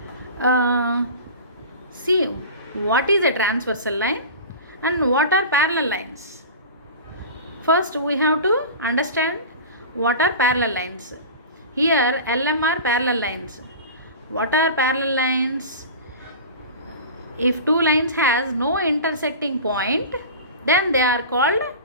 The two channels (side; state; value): both; inverted; correlation -0.33